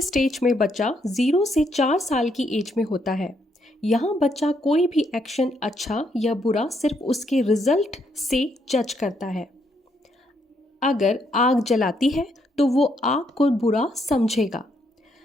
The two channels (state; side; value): normal; both; correlation 0.74